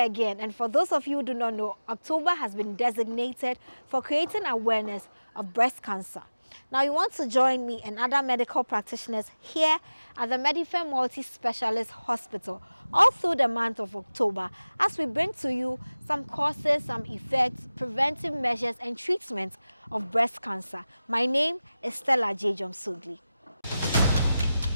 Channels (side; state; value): both; inverted; correlation -0.97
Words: and for those of you who do not know, October has been designated for creating awareness of breast cancer. Now, you want to join me and other medical practitioners here at the Preventive Multi-Specialist Hospital all through the month of October as we bring to you some causes, some effects, preventive measures and treatments of breast cancer. My name is Stella Dziedzorm Sogli.